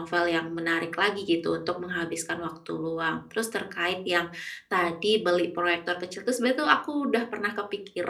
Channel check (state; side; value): identical; both; correlation 1.00